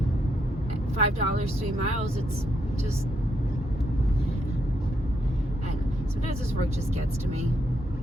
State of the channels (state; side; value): normal; both; correlation 0.77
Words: 3 miles. It's just, and sometimes this work just gets to me.